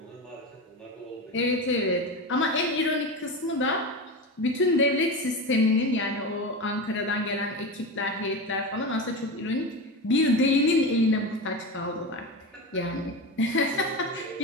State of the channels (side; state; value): both; normal; correlation 0.23